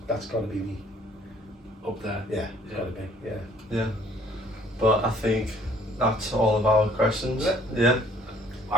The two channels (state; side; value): normal; both; correlation 0.59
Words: got to be me. Up there. Yeah, it's got to be. Yeah. Yeah. But I think that's all of our questions. Yeah.